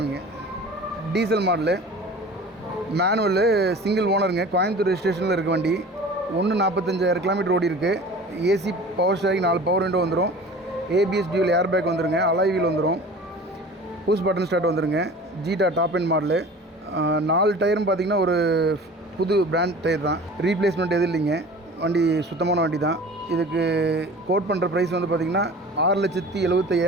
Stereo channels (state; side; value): normal; both; correlation 0.41